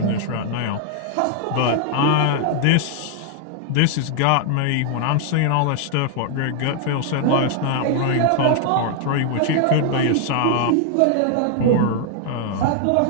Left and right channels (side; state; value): both; different; correlation 0.00